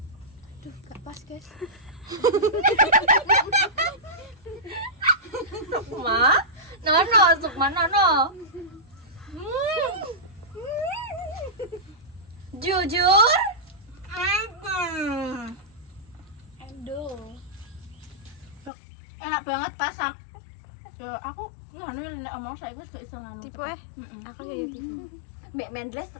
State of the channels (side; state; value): right; drops out; at 18.7 s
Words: gak pas guys. Sukma? Nono, Sukma Nono. Jujur? Endo. Enak banget pas ya aku nganu nek omong saiki wis gak iso nganu. Tipe aku ya tipe. Mbak Mendles